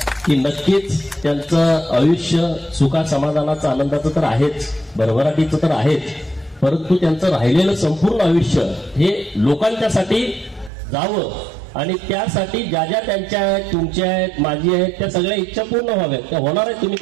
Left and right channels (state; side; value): drops out; left; at 10.7 s